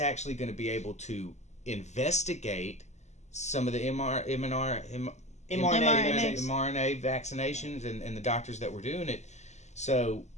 going to be able to investigate some of the mRNA vaccinations and the doctors that were doing it. So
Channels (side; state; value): right; late; 0.33 ms